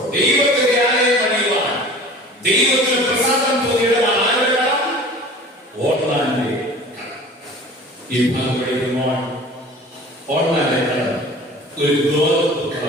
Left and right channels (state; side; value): normal; both; correlation 0.42